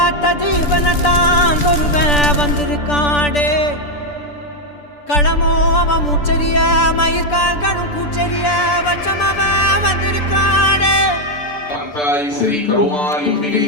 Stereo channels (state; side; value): late; right; 6.8 ms